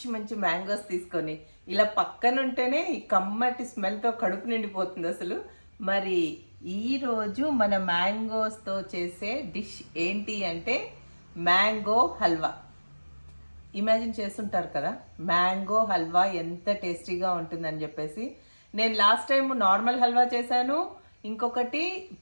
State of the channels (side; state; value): both; inverted; correlation -1.00